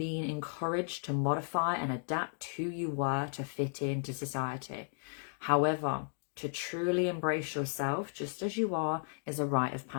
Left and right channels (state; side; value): silent; right; digital silence